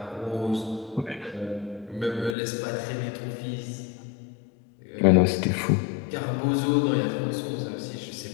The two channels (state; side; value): drops out; right; at 2.4 s